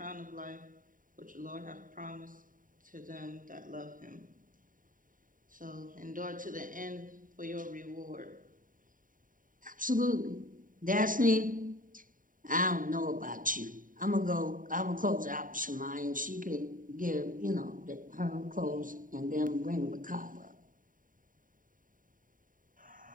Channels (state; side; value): late; left; 0.39 ms